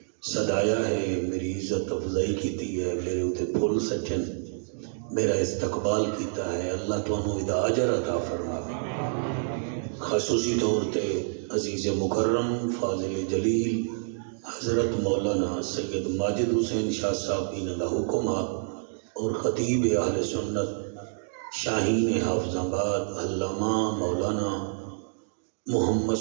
صدایا ہے، میری عزت افضائی کیتی ہے، میرے اتے پھول سچن، میرا استقبال کیتا ہے۔ اللہ تانوں ادا اجر عطا فرماوے۔ خصوصی طور تے عزیز مکرم فاضل جلیل حضرت مولانا سید ماجد حسین شاہ صاحب انہاں دا حکم اور خطیب اہل سنت شاہین حافظ آباد علامہ مولانا محمد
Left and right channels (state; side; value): silent; left; digital silence